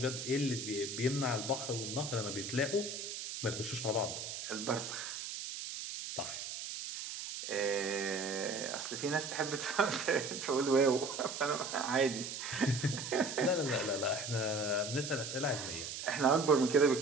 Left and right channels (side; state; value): right; noise; hiss, 6 dB below the sound